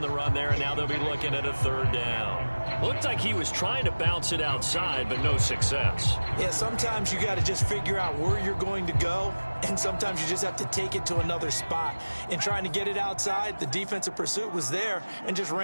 the run there, and now they'll be looking at a 3rd down. Looked like he was trying to bounce it outside, but no success. Yeah, sometimes you got to just figure out where you're going to go, and sometimes you just have to take it to another spot. In trying to get it outside, the defensive pursuit was there and just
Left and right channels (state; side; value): inverted; both; correlation -1.00